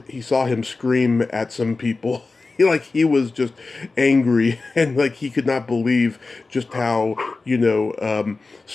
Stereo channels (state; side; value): quieter; right; 3.8 dB